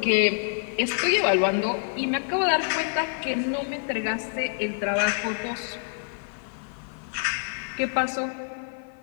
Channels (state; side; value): silent; right; digital silence